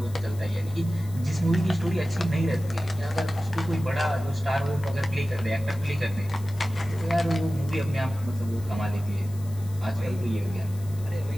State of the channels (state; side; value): noise; left; hiss, 21 dB below the sound